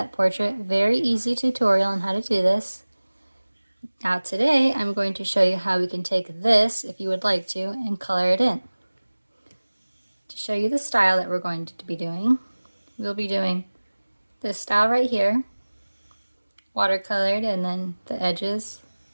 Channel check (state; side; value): inverted; both; correlation -1.00